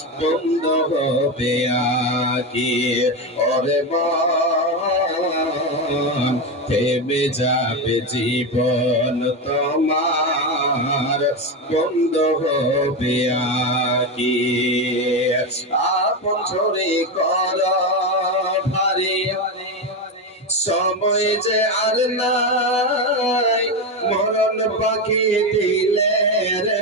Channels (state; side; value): normal; both; correlation 0.14